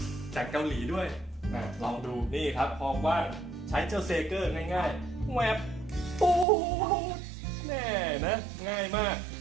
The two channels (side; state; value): left; drops out; at 6.5 s